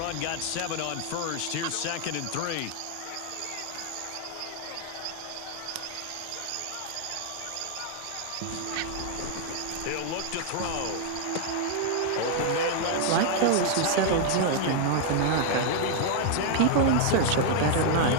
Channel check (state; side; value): different; both; correlation 0.00